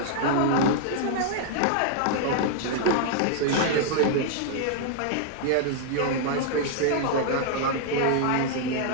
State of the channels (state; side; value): different; both; correlation -0.01